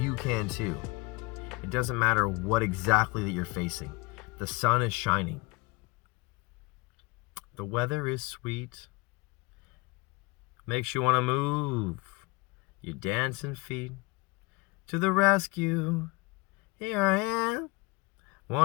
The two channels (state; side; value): quieter; right; 24.9 dB